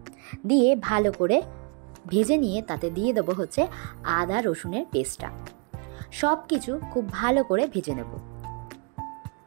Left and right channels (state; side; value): quieter; left; 34.6 dB